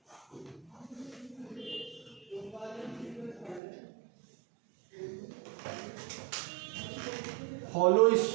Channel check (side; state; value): left; drops out; at 3.6 s